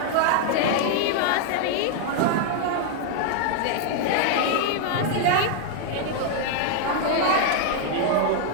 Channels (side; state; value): both; different; correlation 0.00